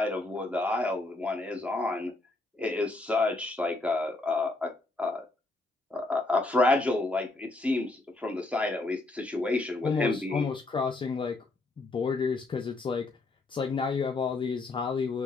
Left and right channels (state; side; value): quieter; right; 3.1 dB